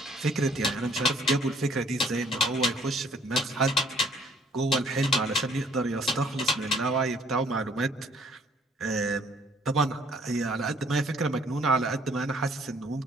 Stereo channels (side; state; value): both; normal; correlation 0.61